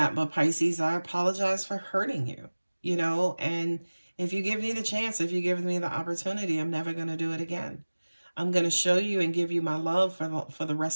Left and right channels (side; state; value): both; inverted; correlation -1.00